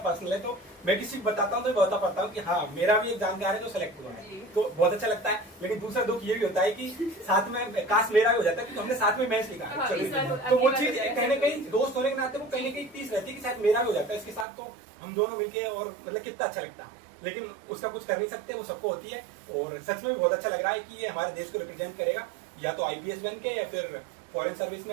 है, तो मैं किसी को बताता हूँ तो बता पाता हूँ कि हाँ मेरा भी एक जानकार है जो सिलेक्ट हुआ है, तो बहुत अच्छा लगता है। लेकिन दूसरा दुख ये भी होता है कि साथ में काश मेरा भी हो जाता है, क्योंकि हमने साथ में मैच लिखा है, तो वो चीज कहीं ना कहीं दोस्त होने के नाते वो कहीं ना कहीं तीस रहती है कि शायद मेरा भी हो जाता है इसके साथ, तो हम दोनों मिलके और मतलब कितना अच्छा लगता है। लेकिन उसका कुछ कर नहीं सकते, वो सबको होती है। और सच में बहुत अच्छा लग रहा है कि ये हमारे देश को रिप्रेजेंट करेगा, या तो IPS बन के या फिर फॉरेन सर्विस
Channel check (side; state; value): left; drops out; at 14.5 s